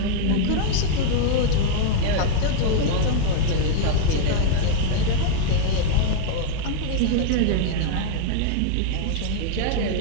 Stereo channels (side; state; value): both; different; correlation 0.00